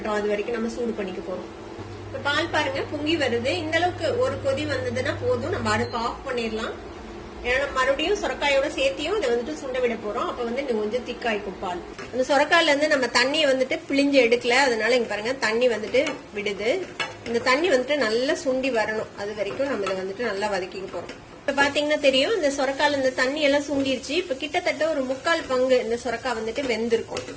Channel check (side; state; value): both; identical; correlation 1.00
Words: அது வரைக்கும் நம்ம சூடு பண்ணிக்க போறோம். இப்ப பால் பாருங்க பொங்கி வருது. இந்த அளவுக்கு ஒரு கொதி வந்ததுன்னா போதும், நம்ம அடுப்பு ஆஃப் பண்ணிடலாம். ஏன்னா மறுபடியும் சொரக்காயோட சேர்த்தியும் இதை வந்துட்டு சுண்ட விட போறோம். அப்ப வந்து இன்னும் கொஞ்சம் திக்காய்க்கும் பால். அந்த சொரக்காயில இருந்து நம்ம தண்ணியை வந்துட்டு பிழிஞ்சு எடுக்கல, அதனால இங்க பாருங்க தண்ணி வந்துட்டு விடுது. இந்த தண்ணி வந்துட்டு நல்லா சுண்டி வரணும், அது வரைக்கும் நம்ம இதை வந்துட்டு நல்லா வதக்கிக்க போறோம். இப்ப பாத்தீங்கன்னா தெரியும், இந்த சொரக்கால இந்த தண்ணி எல்லாம் சுண்டிருச்சு. இப்ப கிட்டத்தட்ட ஒரு 3/4 பங்கு இந்த சொரக்காய் வந்துட்டு வெந்திருக்கும்.